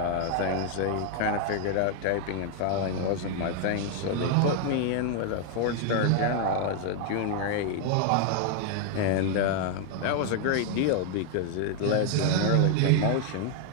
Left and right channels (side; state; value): both; different; correlation 0.00